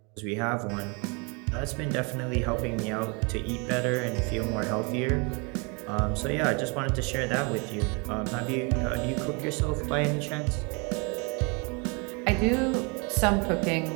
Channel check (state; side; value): quieter; left; 31.9 dB